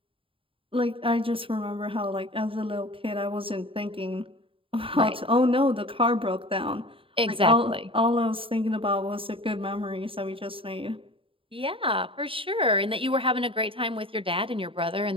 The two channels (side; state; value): left; late; 0.26 ms